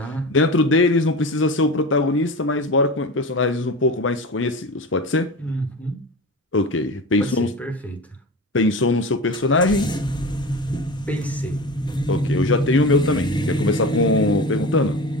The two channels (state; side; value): normal; both; correlation 0.29